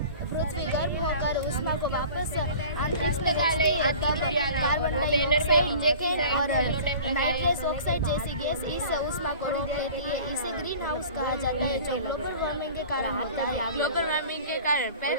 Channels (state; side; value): inverted; both; correlation -0.42